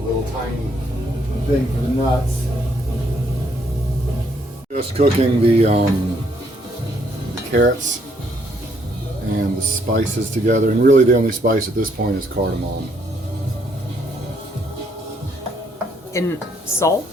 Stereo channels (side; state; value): both; normal; correlation 0.70